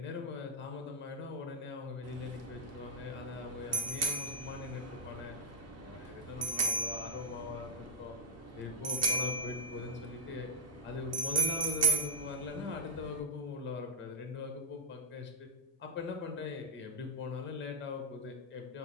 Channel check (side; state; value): both; normal; correlation -0.03